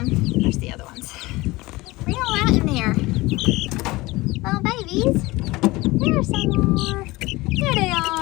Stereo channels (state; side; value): quieter; right; 20.9 dB